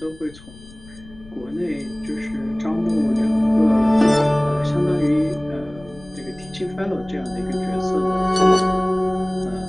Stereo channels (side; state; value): left; noise; rumble, 21 dB below the sound